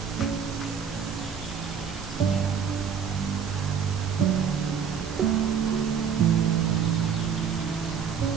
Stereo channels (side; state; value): left; quieter; 7.2 dB